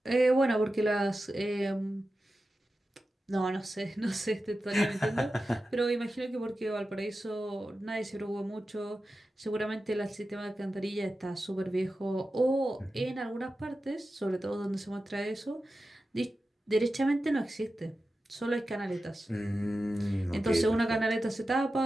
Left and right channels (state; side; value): normal; both; correlation 0.93